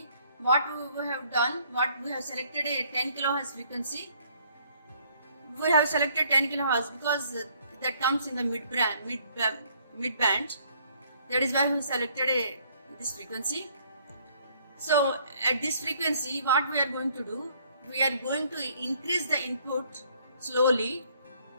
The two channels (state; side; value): inverted; both; correlation -0.64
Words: what we have done, we have selected a 10 kHz frequency. We have selected 10 kHz because that comes in the mid band. That is why we selected this frequency. So at this frequency, what we are going to do, we are going to increase the input slowly,